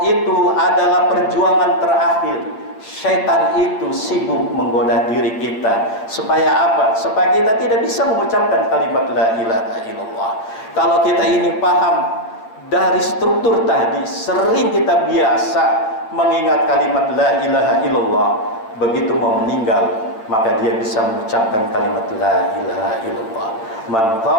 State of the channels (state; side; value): late; right; 9.0 ms